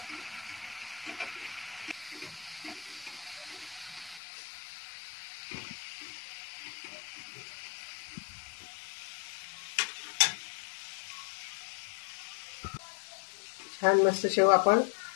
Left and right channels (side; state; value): right; drops out; at 4.2 s